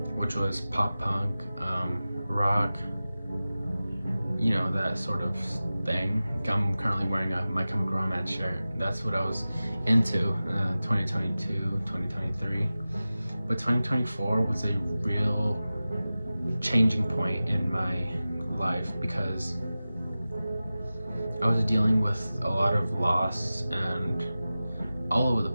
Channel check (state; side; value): inverted; both; correlation -0.96